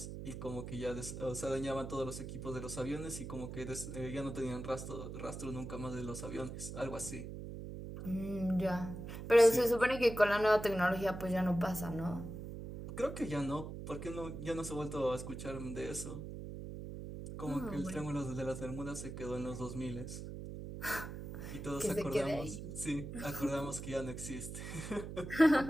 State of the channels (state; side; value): noise; right; hum, 8 dB below the sound